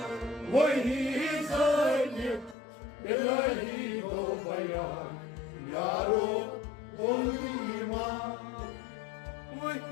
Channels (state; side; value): drops out; right; at 2.6 s